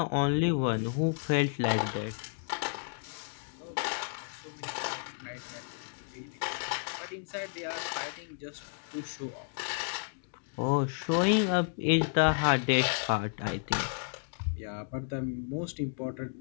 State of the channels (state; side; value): silent; right; digital silence